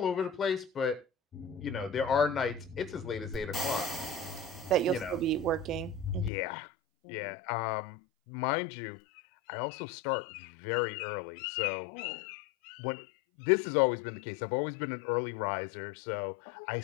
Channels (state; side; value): drops out; right; at 6.3 s